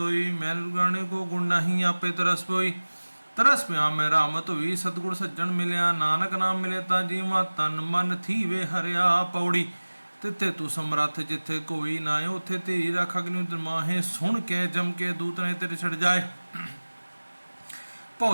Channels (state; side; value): inverted; both; correlation -1.00